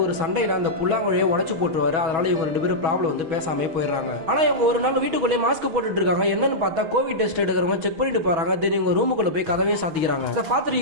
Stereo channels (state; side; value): late; left; 6.2 ms